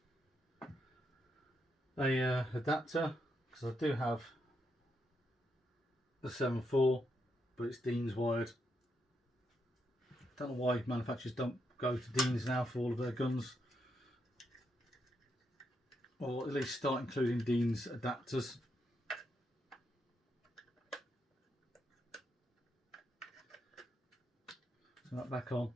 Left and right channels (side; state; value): both; normal; correlation 0.80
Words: a adapter, because I do have the 7.4, but it's Dean's wired. Don't know why manufacturers don't go to Dean's now for all of their guns, or at least start including Dean's adapters. So that back on,